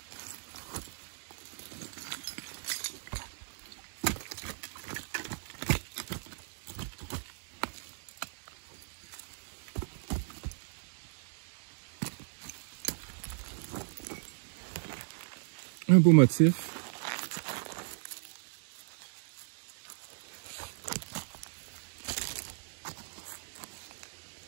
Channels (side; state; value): left; silent; 53 dB below the other